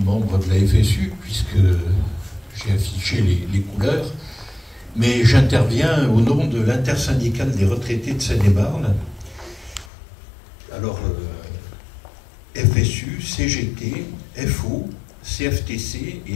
de la FSU puisque j'ai affiché les couleurs, mais j'interviens au nom de l'intersyndicale des retraités de Seine-et-Marne. Alors FSU, CGT, FO, CFTC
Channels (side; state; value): right; drops out; at 9.9 s